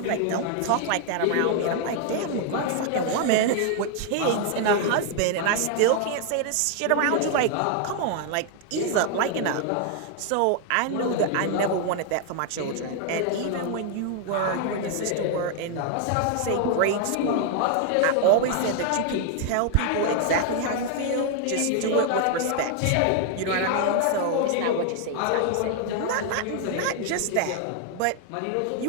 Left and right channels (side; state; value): both; different; correlation 0.00